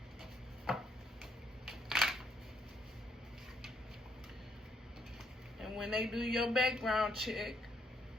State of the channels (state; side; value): normal; both; correlation 0.72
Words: When they do your background check,